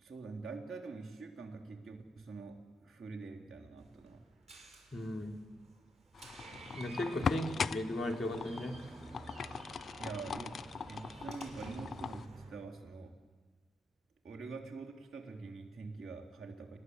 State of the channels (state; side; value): normal; both; correlation 0.81